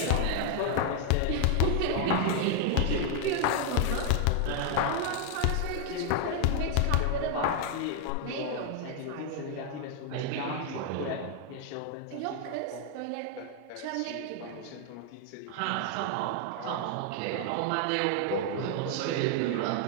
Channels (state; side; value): different; both; correlation 0.00